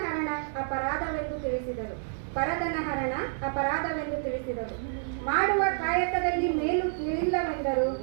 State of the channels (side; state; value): left; silent; digital silence